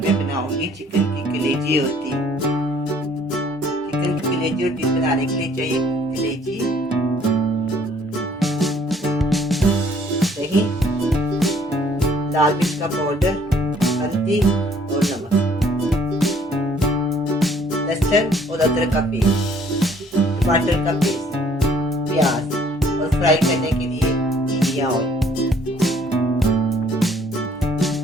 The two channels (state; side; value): normal; both; correlation 0.60